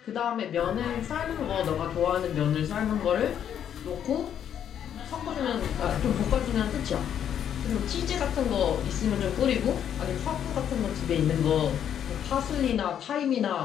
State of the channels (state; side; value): quieter; right; 9.3 dB